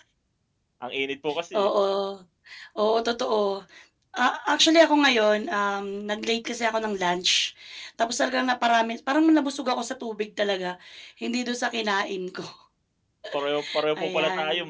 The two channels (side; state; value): both; identical; correlation 1.00